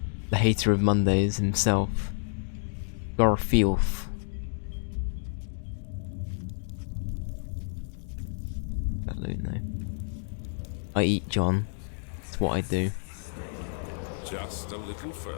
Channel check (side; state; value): right; silent; digital silence